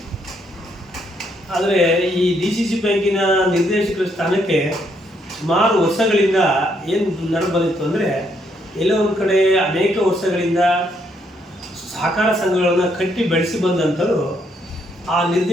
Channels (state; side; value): normal; both; correlation 0.73